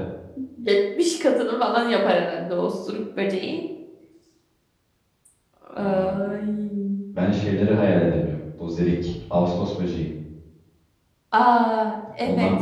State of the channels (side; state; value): both; identical; correlation 1.00